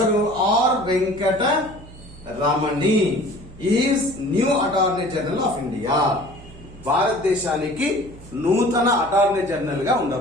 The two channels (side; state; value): right; noise; hum, 19 dB below the sound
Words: R Venkata Ramani is new attorney general of India. భారతదేశానికి నూతన అటార్నీ జనరల్ గా